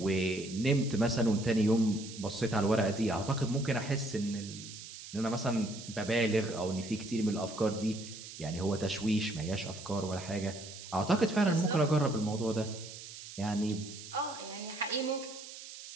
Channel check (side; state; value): right; noise; hiss, 13 dB below the sound